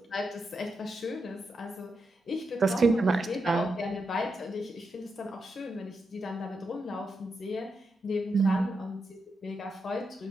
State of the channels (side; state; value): both; normal; correlation 0.85